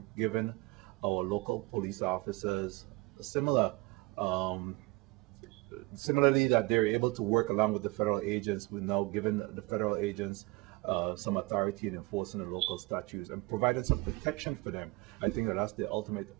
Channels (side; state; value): left; quieter; 23.2 dB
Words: given our local police officers similarly that they're able to work along with the federal agents. We're now giving the federal agents some authority in enforcing the local statutes and providing some protection for them. I think that that's the ultimate